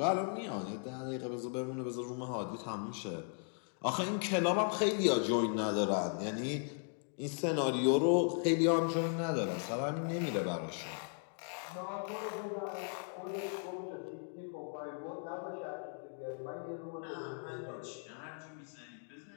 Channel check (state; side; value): silent; right; 53 dB below the other